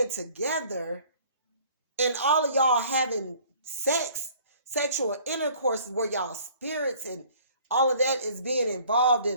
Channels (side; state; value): both; inverted; correlation -0.54